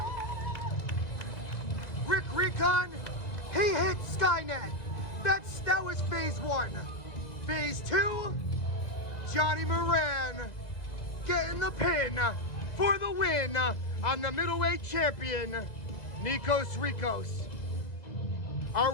Recon, he hit Skynet. That was phase 1. Phase 2, Johnny Moran getting the pin for the win on the middleweight champion, Nikos Rikos. A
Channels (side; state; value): right; late; 2.0 ms